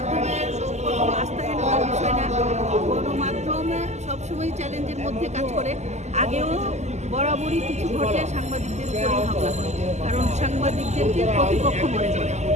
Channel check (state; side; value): late; left; 0.33 ms